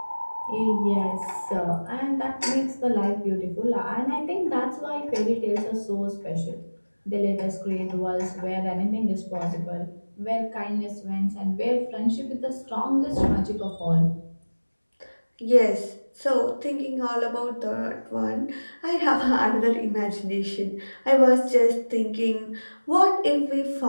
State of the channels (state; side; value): inverted; both; correlation -1.00